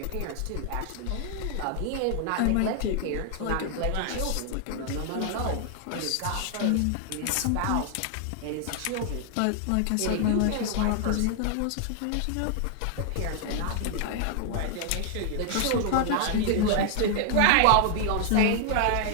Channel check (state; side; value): different; both; correlation 0.00